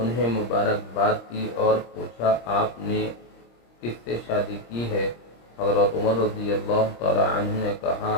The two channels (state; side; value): late; right; 26 ms